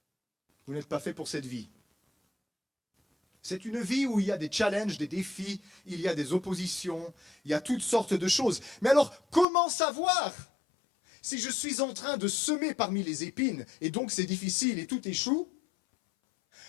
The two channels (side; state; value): right; drops out; at 9.5 s